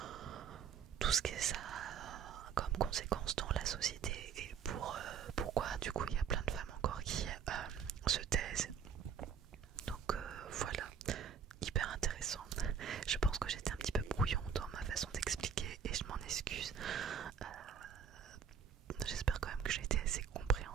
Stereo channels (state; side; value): quieter; left; 7.2 dB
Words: ce que ça a comme conséquence dans la société, et pourquoi du coup il y a plein de femmes encore qui se taisent. Donc voilà, hyper intéressant. Je pense que j'étais un petit peu brouillon dans ma façon d'expliquer, et je m'en excuse. J'espère quand même que j'ai été assez